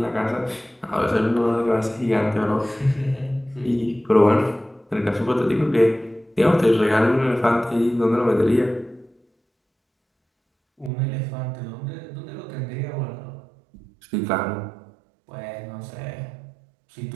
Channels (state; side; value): drops out; left; at 10.9 s